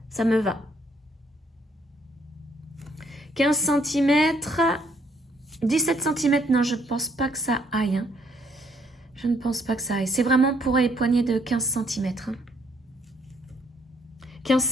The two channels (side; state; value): both; normal; correlation 0.68